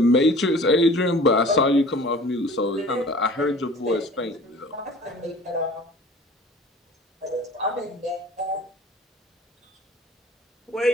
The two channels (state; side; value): normal; both; correlation 0.45